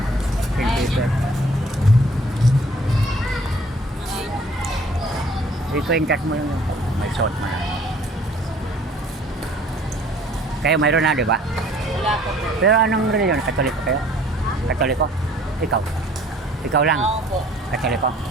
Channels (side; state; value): both; normal; correlation 0.55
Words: St. Peter. Ikwentas mo yung may suot mo na. Kayo mayroon na, di ba? Wala po. Pero anong reliyon? Katoliko kayo? Katoliko? Ikaw? Ikaw lang? Ako po. Katoliko?